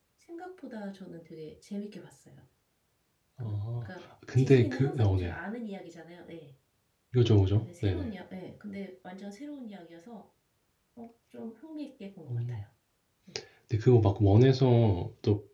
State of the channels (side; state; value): both; identical; correlation 1.00